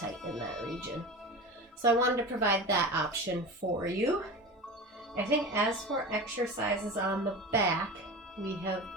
in that region. So I wanted to provide that option for you. I think as for exercises on the back, we have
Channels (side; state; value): both; normal; correlation 0.30